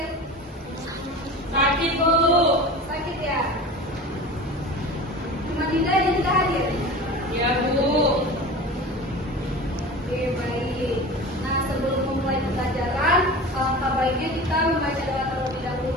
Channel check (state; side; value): normal; both; correlation 0.34